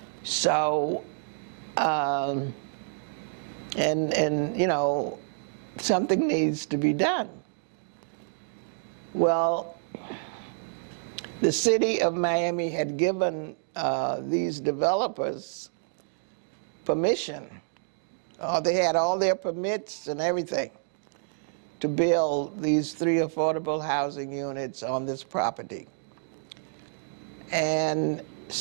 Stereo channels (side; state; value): left; silent; digital silence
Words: So, and you know, something needs to be done. Well, the city of Miami had given these developers permission. They had all their permits and everything to build these 3 affordable housing units on this property. And